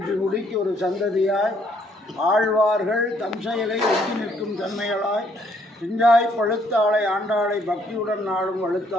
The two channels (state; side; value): normal; both; correlation 0.68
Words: முடிக்கு ஒரு சந்ததியாய் ஆழ்வார்கள் தம் செயலை ஒட்டி நிற்கும் தன்மைகளாய் பிஞ்சாய் பழுத்தாளை ஆண்டாளை பக்தியுடன் நாளும்